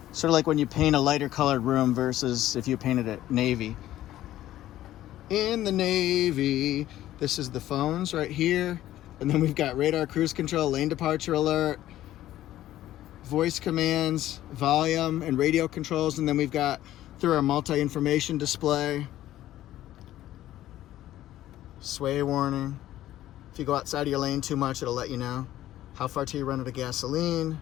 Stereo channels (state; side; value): quieter; right; 13.7 dB